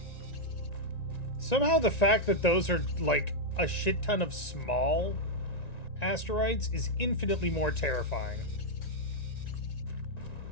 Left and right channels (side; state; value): right; late; 1.9 ms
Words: Somehow the fact that those are, like, a shit ton of small asteroids is infinitely more terrifying.